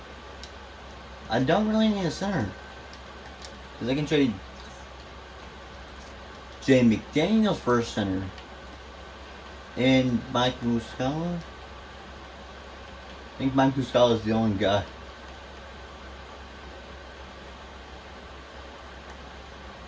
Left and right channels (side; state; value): both; identical; correlation 1.00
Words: I don't really need a center. Because I can trade Jay McDaniels for a center. And Mike Muscala. I think Mike Muscala is the only guy.